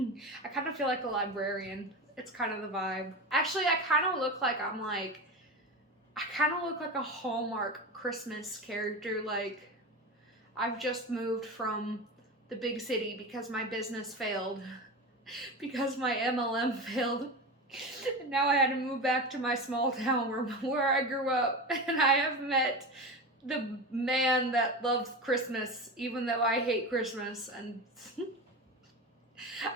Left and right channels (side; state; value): both; normal; correlation 0.24